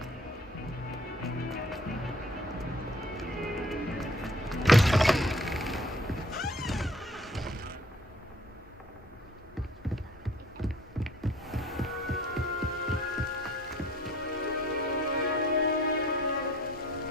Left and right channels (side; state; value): both; normal; correlation 0.54